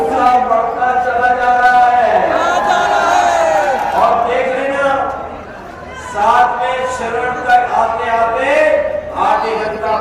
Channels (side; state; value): both; identical; correlation 1.00